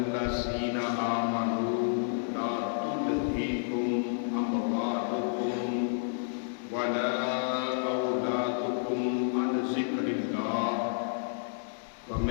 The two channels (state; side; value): silent; right; digital silence